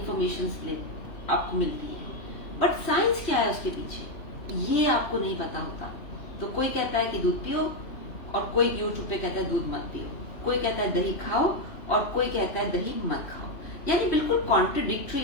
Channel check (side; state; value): right; late; 3.1 ms